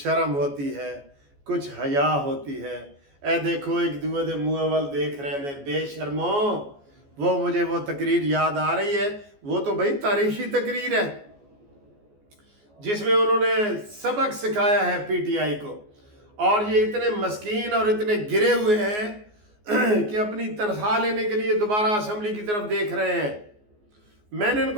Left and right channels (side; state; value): left; late; 14 ms